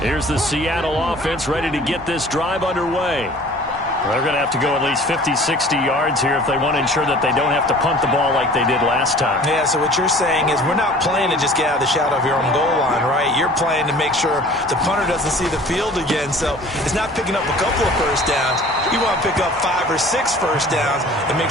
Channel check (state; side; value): normal; both; correlation 0.47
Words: Here's the Seattle offense ready to get this drive underway. They're going to have to go at least 50, 60 yards here if they want to ensure that they don't have to punt the ball like they did last time. Yeah, so what you're saying is we're not playing to just get out of the shadow of your own goal line, right? You're playing to make sure the punter doesn't see the field again. So it's not picking up a couple of first downs. You want to pick up 5 or 6 first downs and